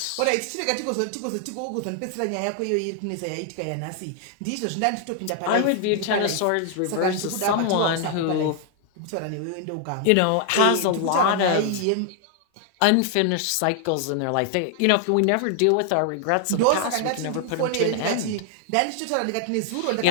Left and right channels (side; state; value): both; different; correlation 0.00